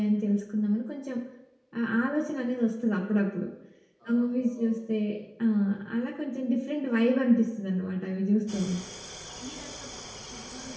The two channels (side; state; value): both; identical; correlation 1.00